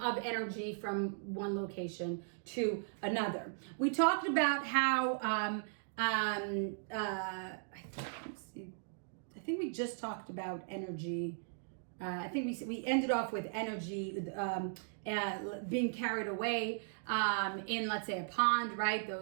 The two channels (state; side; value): silent; left; digital silence